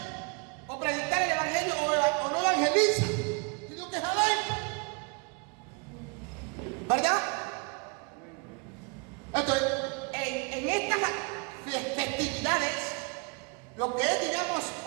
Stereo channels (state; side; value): quieter; left; 32.0 dB